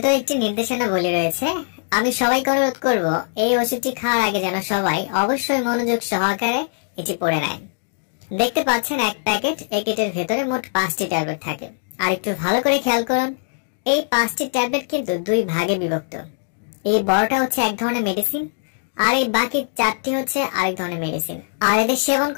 একটি নির্দেশনাবলী রয়েছে। আমি সবাইকে অনুরোধ করব এই ওষুধটি খাওয়ার আগে যেন সবাই অবশ্যই মনোযোগ সহকারে এটি পড়ে নেয়। দেখতে পাচ্ছেন এক প্যাকেট একিডের ভেতরে মোট 5টি ট্যাবলেট থাকে। আর একটু ভালো করে খেয়াল করুন, এই 5টি ট্যাবলেট কিন্তু 2 ভাগে বিভক্ত। এই বড়টা হচ্ছে এক ধরনের মেডিসিন আর এই বাকি 4টি হচ্ছে আরেক ধরনের মেডিসিন। আর এদের সেবন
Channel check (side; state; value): right; silent; digital silence